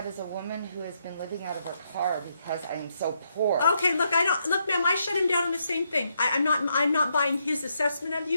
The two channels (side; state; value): both; inverted; correlation -0.78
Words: is a woman who has been living out of her car because I am so poor. Okay, look, look, ma'am, I shut him down on the same thing. I'm not buying his assessment of